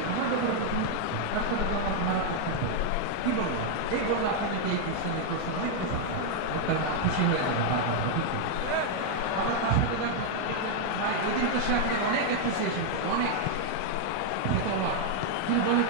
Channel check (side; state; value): both; different; correlation 0.00